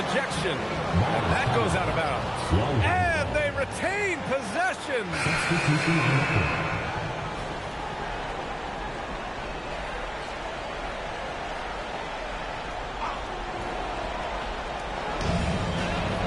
And that goes out of bounds. And they retain possession.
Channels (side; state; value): both; identical; correlation 1.00